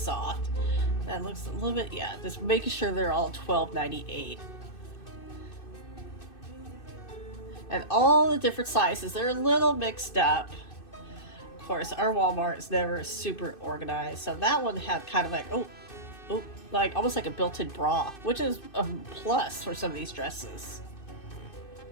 That looks a little bit, yeah, just making sure they're all $12.98. And all the different sizes, they're a little mixed up. Of course, our Walmart is never super organized. So that one had kind of like, oh, like almost like a built-in bra, which is a plus for some of these dresses.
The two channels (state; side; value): late; right; 2.6 ms